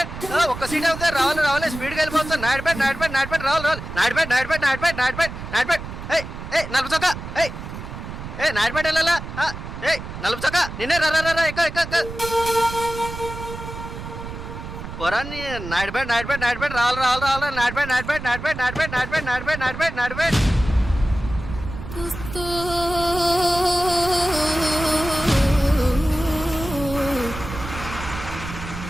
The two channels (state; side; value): noise; right; rumble, 10 dB below the sound